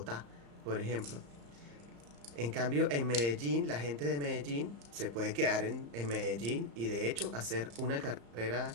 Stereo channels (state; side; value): late; left; 35 ms